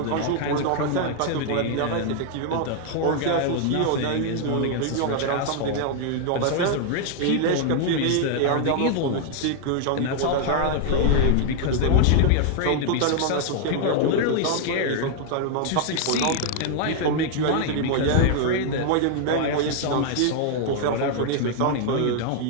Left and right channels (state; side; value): different; both; correlation 0.00